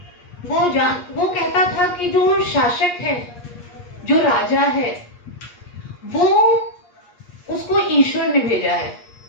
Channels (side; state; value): right; late; 8.4 ms